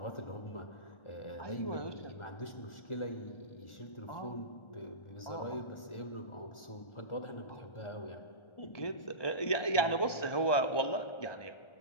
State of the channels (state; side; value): late; right; 1.3 ms